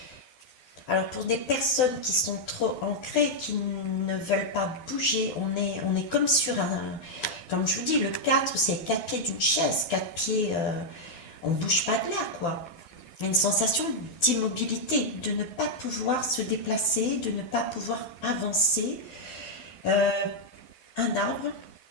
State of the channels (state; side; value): late; right; 12 ms